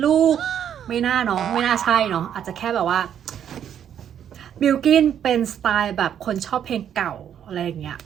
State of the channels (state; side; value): quieter; left; 9.3 dB